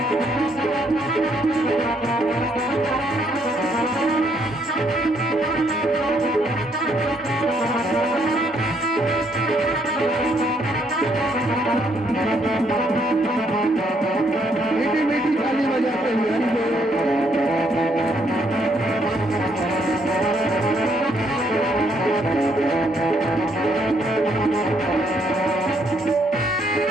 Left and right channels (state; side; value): normal; both; correlation 0.71